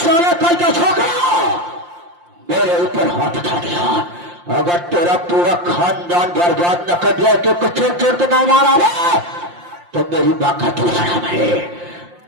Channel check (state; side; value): late; left; 5.7 ms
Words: कल का छोकरा मेरे ऊपर हाथ उठा दिया। अगर तेरा पूरा खानदान बर्बाद न कर दिया तो कुछ चोर तो ना मारा रे, तो मेरी माँ का दूसरा है।